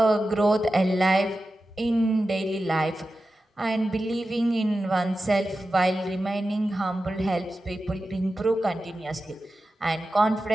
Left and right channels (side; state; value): both; normal; correlation 0.93